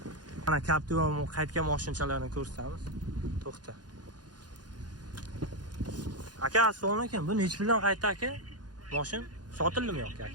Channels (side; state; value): left; late; 0.69 ms